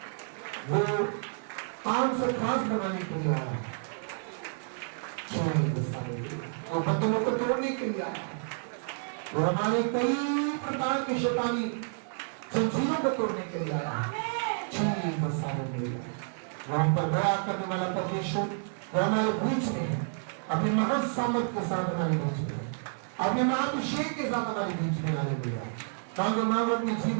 वो काम से खास बनाने के लिए आया है, वो बंधनों को तोड़ने के लिए आया है, वो हमारे कई प्रकार के शैतानी जंजीरों को तोड़ने के लिए आया है। वहां पर दया करने वाला परमेश्वर वो हमारे बीच में है, अपने महान सामर्थ के साथ हमारे बीच में है, अपने महाअभिषेक के साथ हमारे बीच में आने लगा। मांगो, मांगो, अपने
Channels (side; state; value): left; silent; 58 dB below the other